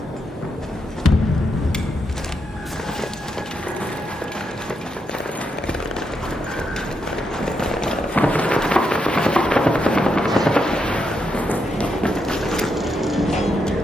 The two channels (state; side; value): normal; both; correlation 0.82